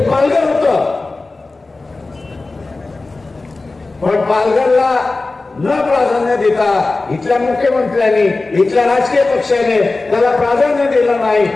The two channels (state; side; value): quieter; right; 3.4 dB